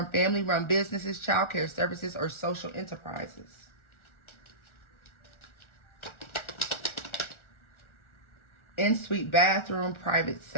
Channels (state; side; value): late; right; 1.4 ms